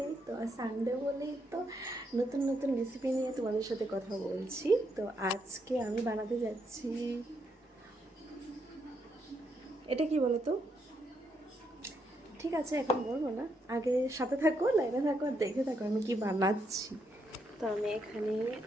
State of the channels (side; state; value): both; normal; correlation 0.78